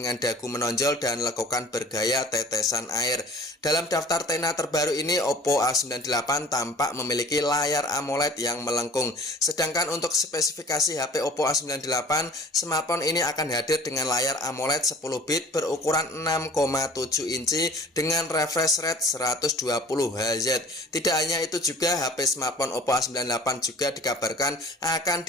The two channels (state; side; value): normal; both; correlation 0.47